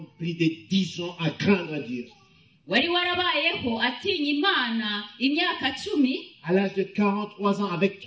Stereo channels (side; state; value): both; identical; correlation 1.00